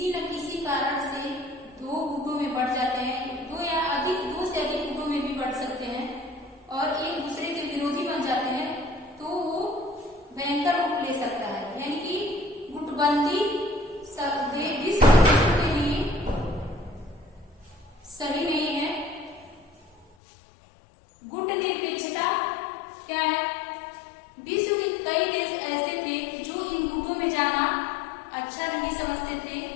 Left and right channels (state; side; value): drops out; right; at 20.1 s